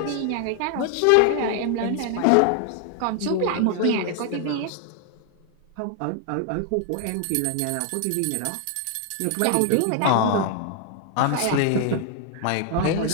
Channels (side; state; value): both; different; correlation 0.00